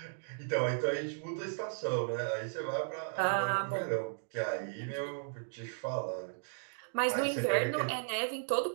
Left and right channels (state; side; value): silent; left; digital silence